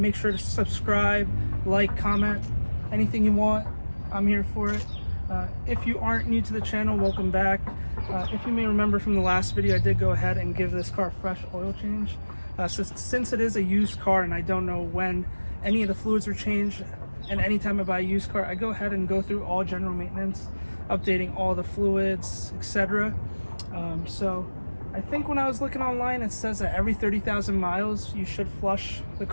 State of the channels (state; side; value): inverted; both; correlation -1.00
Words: sure to subscribe, like, comment, anything you want. I'm here for it. If you aren't new to the channel, welcome back. If you may remember from the last video, I did go ahead and give this car a fresh oil change. Since it is a used car and I don't know when any of the fluids are changed, and anytime I buy a used car, I go ahead and go through all general maintenance, updating all the fluids, etc. So I think when I was looking online, it says that every 30,000 miles you should flush the